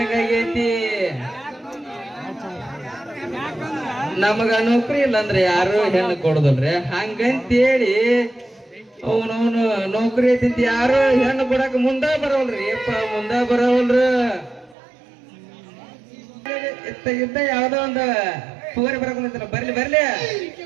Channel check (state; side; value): drops out; left; at 14.8 s